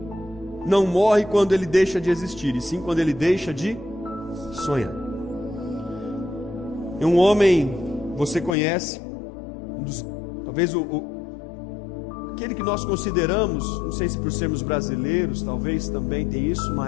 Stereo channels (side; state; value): right; drops out; at 8.6 s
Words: não morre quando ele deixa de existir, e sim quando ele deixa de sonhar. E um homem, você conhece, talvez aquele que nós consideramos, não sei se por sermos brasileiros, talvez também tem isso,